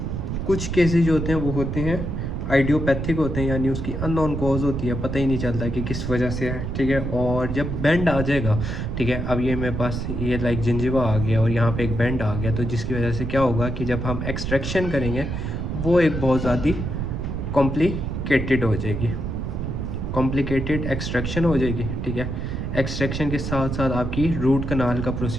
कुछ केसेस जो होते हैं वो होते हैं आइडियोपैथिक होते हैं, यानी उसकी अननोन कॉज होती है, पता ही नहीं चलता कि किस वजह से है। ठीक है, और जब बेंड आ जाएगा, ठीक है, अब ये मेरे पास ये लाइक जिंजिवा आ गया और यहाँ पे एक बेंड आ गया, तो जिसकी वजह से क्या होगा कि जब हम एक्सट्रैक्शन करेंगे वो एक बहुत ज़्यादा कॉम्प्लिकेटेड हो जाएगी, कॉम्प्लिकेटेड एक्सट्रैक्शन हो जाएगी। ठीक है, एक्सट्रैक्शन के साथ साथ आपकी रूट कनाल का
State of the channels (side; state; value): right; noise; rumble, 3 dB below the sound